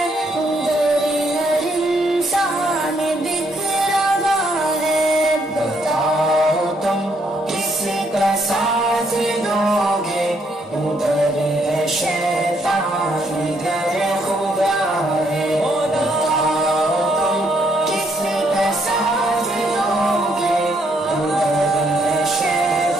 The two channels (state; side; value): normal; both; correlation 0.72